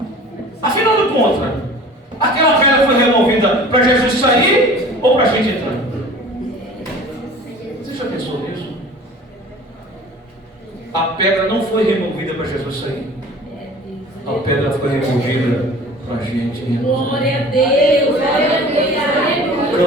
Afinal de contas, aquela pedra foi removida para Jesus sair ou para a gente entrar? Você já pensou nisso? A pedra não foi removida para Jesus sair. A pedra foi removida para a gente. Glória a Deus. O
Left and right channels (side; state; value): both; normal; correlation 0.44